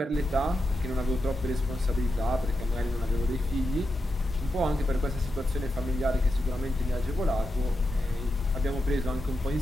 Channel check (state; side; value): normal; both; correlation 0.88